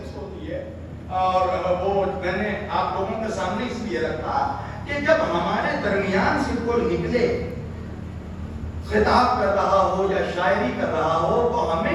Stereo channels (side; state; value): both; identical; correlation 1.00